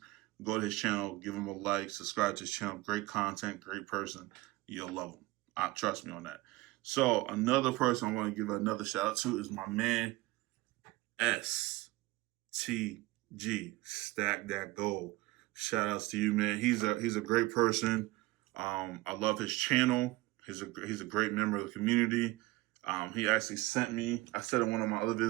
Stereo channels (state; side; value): quieter; left; 20.2 dB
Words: go to his channel, give him a like, subscribe to his channel. Great content, great person. You'll love him. Trust me on that. So another person I want to give another shout out to is my man, STG, Stack That Gold. Shout outs to you, man. He's a great person. I love his channel. He's a great member of the community. He actually sent me, I said in one of my other